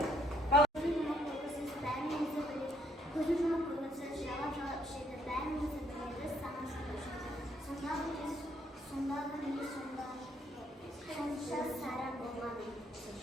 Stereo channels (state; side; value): normal; both; correlation 0.69